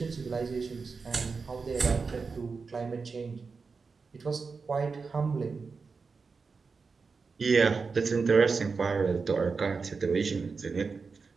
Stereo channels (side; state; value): left; quieter; 4.8 dB